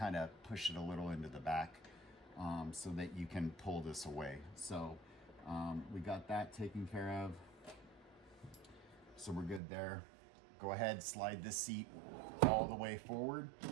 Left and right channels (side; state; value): left; drops out; at 9.6 s